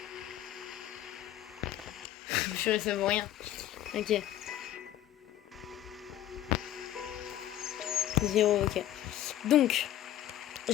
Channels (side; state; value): right; quieter; 12.5 dB